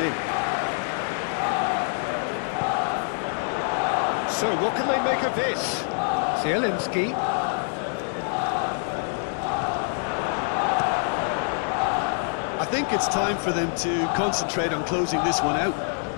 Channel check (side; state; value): right; silent; 58 dB below the other